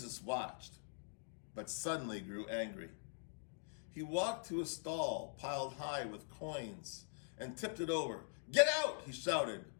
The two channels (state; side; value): silent; right; digital silence